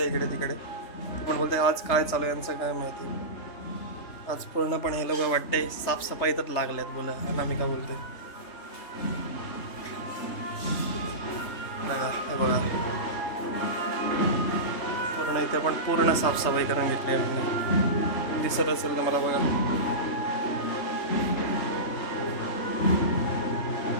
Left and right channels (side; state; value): right; late; 3.3 ms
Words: इकडे तिकडे. ती पण बोलते आज काय चालू आहे यांचं काय माहिती. आज पूर्णपणे हे लोक वाटते साफसफाईतच लागल्यात बोला. अनामिका बोलते बघा. हे बघा पूर्ण इथे पण पूर्ण साफसफाई करून घेतली आम्ही. दिसत असेल तर मला बघा.